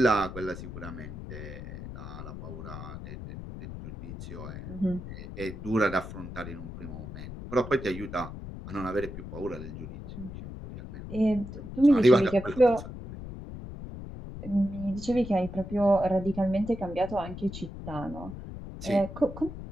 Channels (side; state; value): left; noise; rumble, 10 dB below the sound